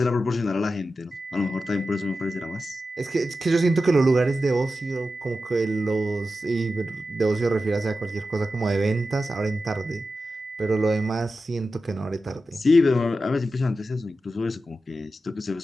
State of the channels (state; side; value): normal; both; correlation 0.92